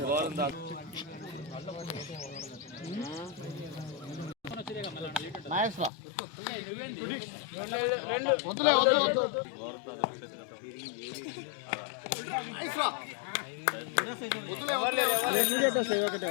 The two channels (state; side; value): drops out; right; at 5.9 s